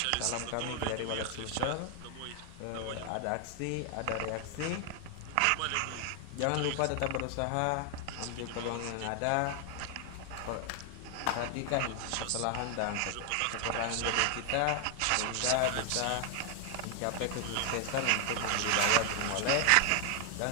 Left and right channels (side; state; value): both; different; correlation 0.00